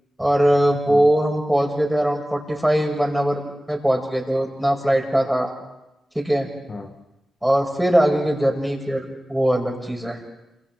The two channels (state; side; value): normal; both; correlation 0.97